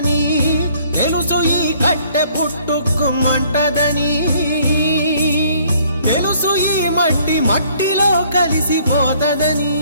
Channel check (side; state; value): both; inverted; correlation -0.61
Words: తెలుసు ఈ కట్టె పుట్టుకుమంటదని, తెలుసు ఈ మట్టి మట్టిలో కలిసిపోతదని,